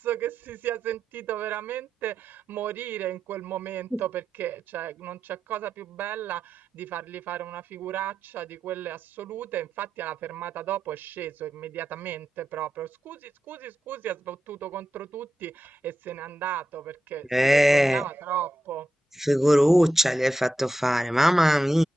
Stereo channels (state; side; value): normal; both; correlation 0.89